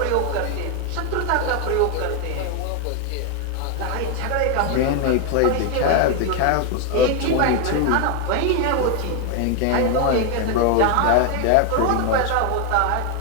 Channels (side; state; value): both; different; correlation 0.01